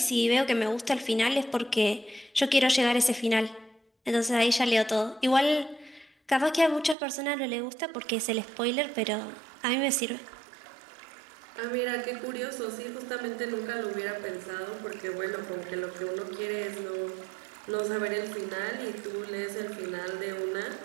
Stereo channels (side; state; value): left; drops out; at 7.0 s